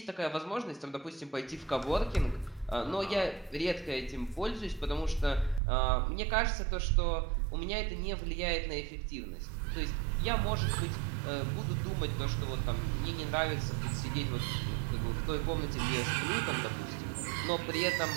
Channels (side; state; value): left; drops out; at 5.6 s